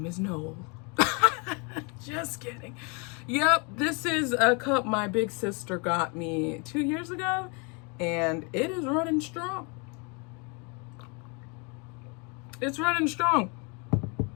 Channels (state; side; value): quieter; right; 32.8 dB